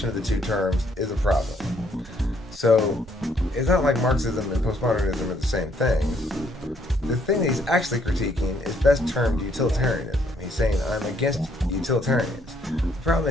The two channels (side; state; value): both; normal; correlation 0.68